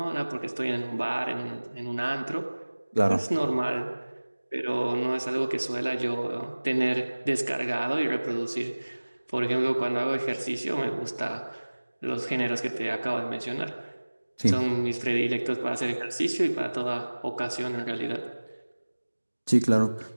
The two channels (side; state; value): both; inverted; correlation -1.00